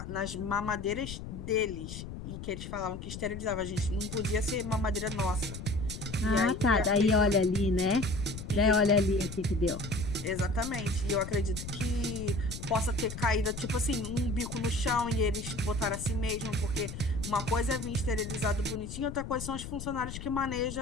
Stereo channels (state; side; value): noise; left; rumble, 9 dB below the sound